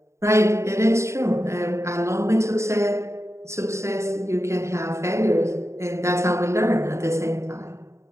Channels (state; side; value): late; left; 0.14 ms